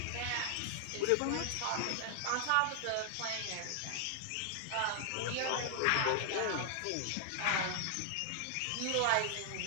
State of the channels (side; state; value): both; different; correlation 0.00